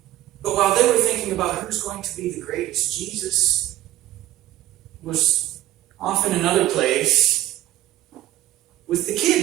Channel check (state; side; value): quieter; left; 14.3 dB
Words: But while they were thinking about who's going to be the greatest, Jesus was off in another place with the